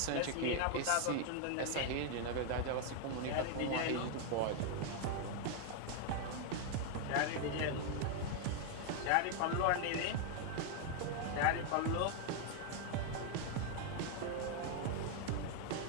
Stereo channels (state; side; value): different; both; correlation 0.00